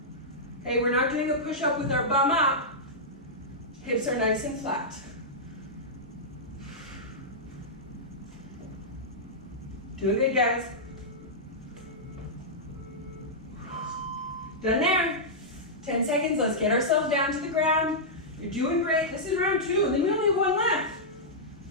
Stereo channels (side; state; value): both; normal; correlation -0.11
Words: Okay, we're not doing a push-up with our bum up. Hips are nice and flat. Doing good, guys. Done there. 10 seconds, let's get ourselves down to the ground. You're doing great. This is round 2, and then we only have 1 left.